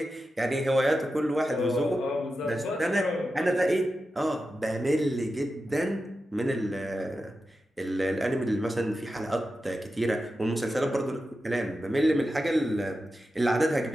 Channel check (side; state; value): both; normal; correlation 0.91